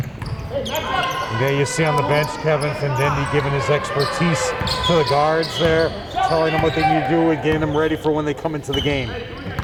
There you see on the bench Kevin Findendi giving his expertise to the guards there, telling them what they need to do and getting them ready for when they come into the game.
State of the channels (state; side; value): identical; both; correlation 1.00